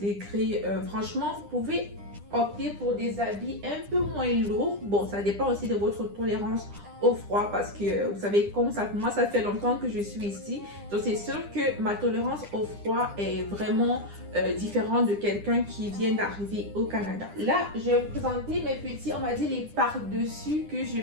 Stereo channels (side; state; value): left; late; 9.9 ms